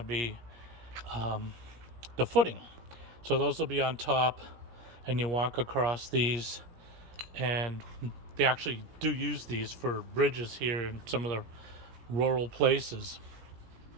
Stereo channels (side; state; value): left; late; 17 ms